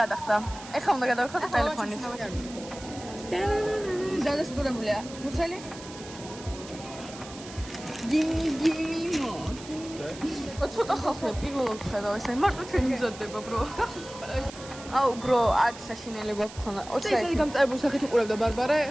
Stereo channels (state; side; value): noise; right; hiss, 16 dB below the sound